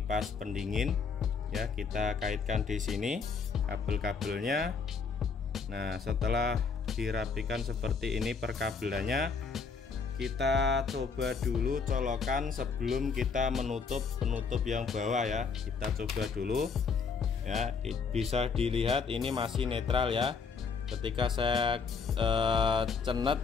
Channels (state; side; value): quieter; right; 5.3 dB